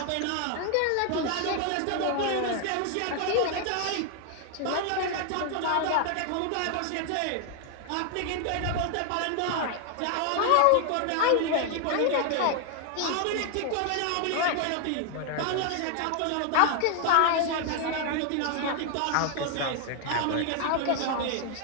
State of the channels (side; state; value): both; different; correlation 0.00